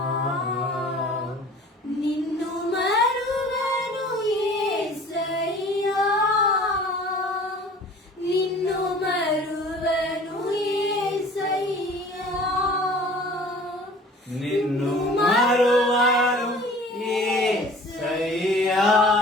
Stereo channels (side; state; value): both; normal; correlation 0.47